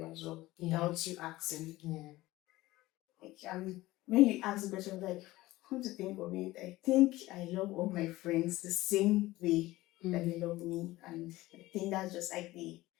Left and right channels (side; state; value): right; quieter; 18.0 dB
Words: as well, without you asking. Like, when you ask the question, like, come to think of it, I think I love all my friends the same way that they love me, and I think that's just like